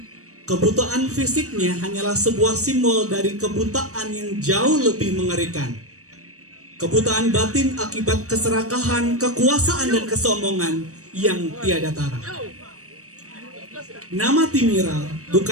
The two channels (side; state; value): left; late; 0.65 ms